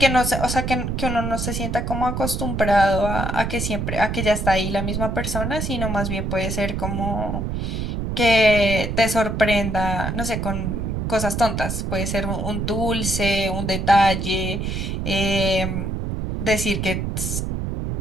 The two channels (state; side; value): noise; right; rumble, 2 dB below the sound